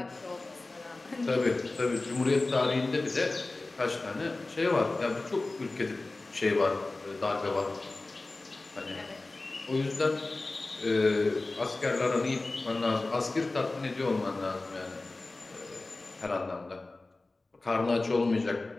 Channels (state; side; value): quieter; right; 3.2 dB